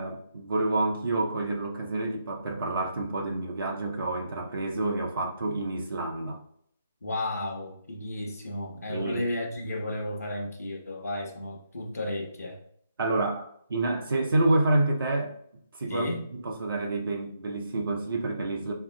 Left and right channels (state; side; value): inverted; both; correlation -0.79